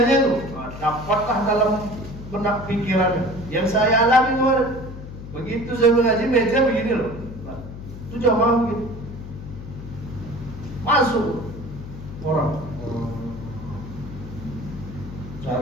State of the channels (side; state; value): left; noise; hum, 11 dB below the sound